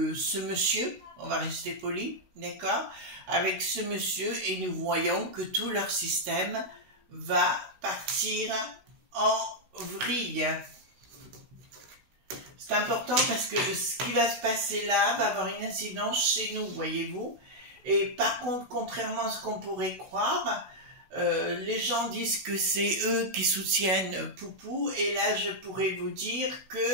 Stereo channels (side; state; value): left; late; 16 ms